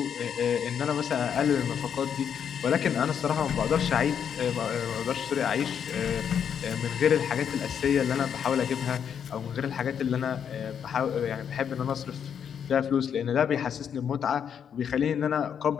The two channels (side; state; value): right; quieter; 8.0 dB